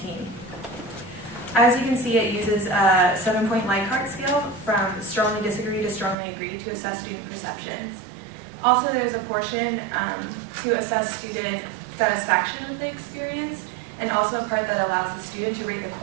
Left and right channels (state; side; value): drops out; left; at 6.2 s